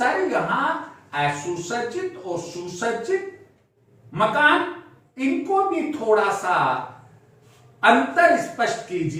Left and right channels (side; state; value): both; identical; correlation 1.00